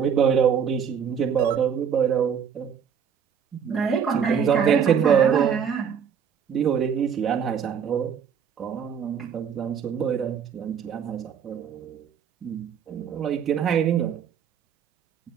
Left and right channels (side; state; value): left; quieter; 7.6 dB